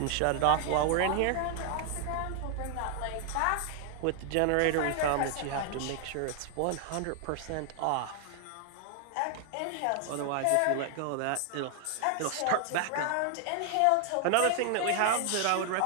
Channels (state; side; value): different; both; correlation 0.00